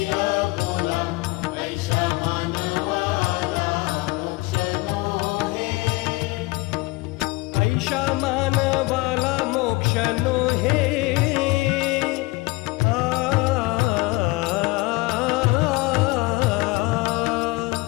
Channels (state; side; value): quieter; right; 23.1 dB